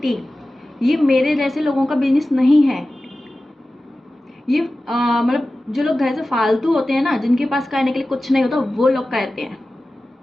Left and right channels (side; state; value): both; normal; correlation 0.95